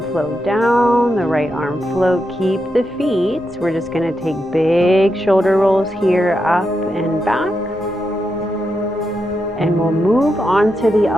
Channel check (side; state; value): both; normal; correlation 0.85